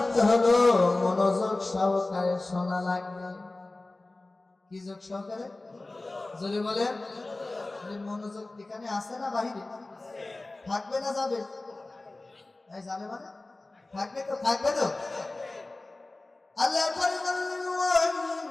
হলো মনোযোগ সহকারে শোনা লাগবে। কি যোগ সহকারে? যদি বলেন মনোযোগ এখানে আছে না বাহিরে? থাকবে না যাবে? যাবে মানে থাকবে তো, থাকবে তো। আল্লাহ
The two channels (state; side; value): quieter; right; 3.0 dB